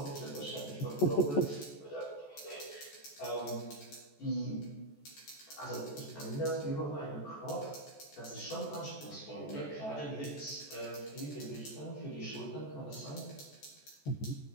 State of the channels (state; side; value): late; right; 14 ms